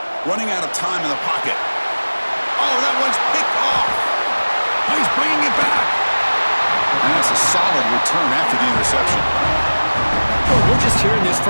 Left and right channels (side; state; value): both; inverted; correlation -1.00